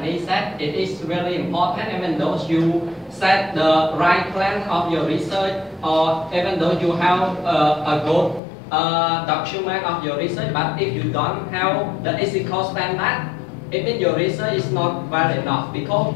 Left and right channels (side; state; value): right; drops out; at 8.4 s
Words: said, it is really important, even though you set the right plan of your research, or even though you have a good document of your research, but if you don't have the ethical standard, it means your research is not well enough, because